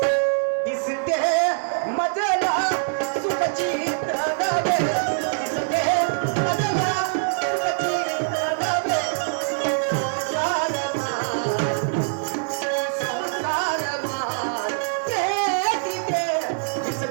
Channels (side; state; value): left; silent; 63 dB below the other